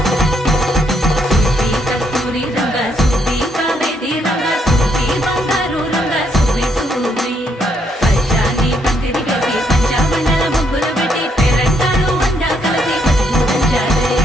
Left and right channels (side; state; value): both; normal; correlation 0.73